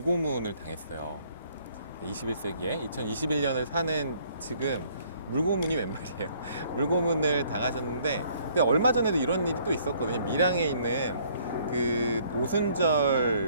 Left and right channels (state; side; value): inverted; both; correlation -0.62